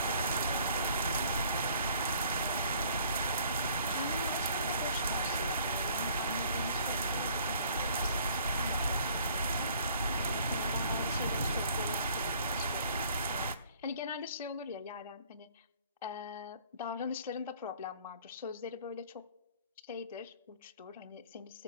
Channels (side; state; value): both; inverted; correlation -0.57